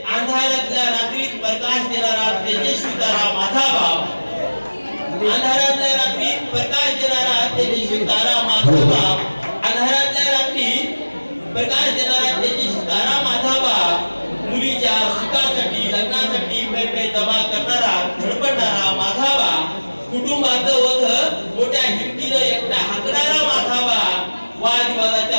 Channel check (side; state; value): both; inverted; correlation -1.00